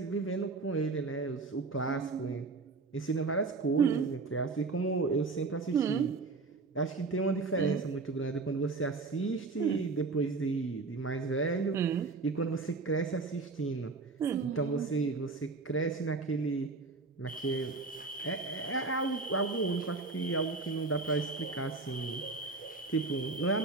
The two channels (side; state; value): left; quieter; 3.9 dB